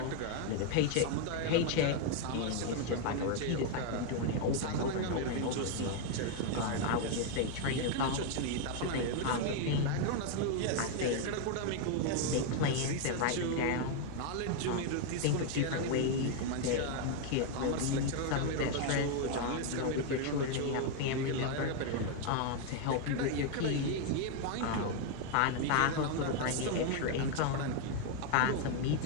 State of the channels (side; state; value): both; different; correlation 0.01